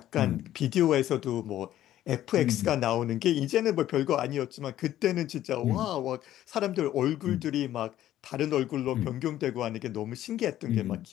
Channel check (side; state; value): right; quieter; 12.9 dB